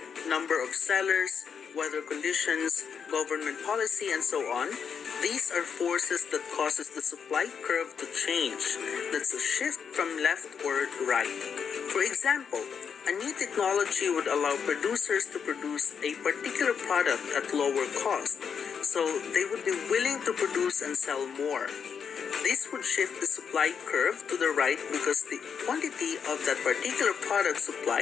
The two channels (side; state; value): right; quieter; 6.8 dB